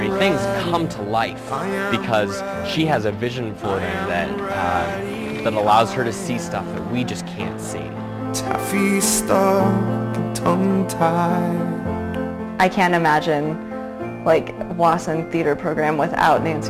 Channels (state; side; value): identical; both; correlation 1.00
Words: things come to life because she has a vision for them that allows her to see stuff that we just can't see. Taffy stuck, tongue-tied. I can't imagine like Wasson theater program without